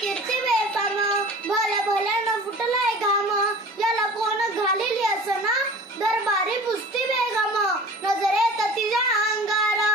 बेफाम भल्या भल्यानं फुटलाय घाम याला कोण घालेली असना दरबारी पुस्ती बेगम नजरेत तिच्या अंगार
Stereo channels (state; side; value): normal; both; correlation 0.41